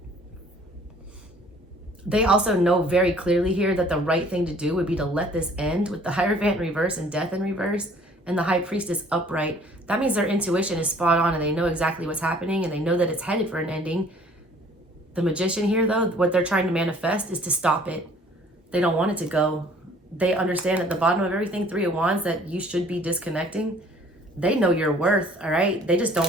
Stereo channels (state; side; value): normal; both; correlation 0.55